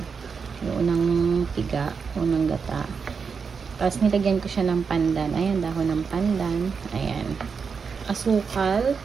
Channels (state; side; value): quieter; left; 5.7 dB